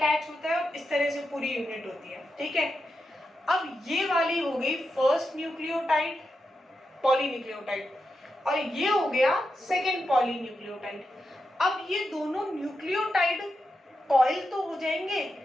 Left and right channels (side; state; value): both; normal; correlation 0.87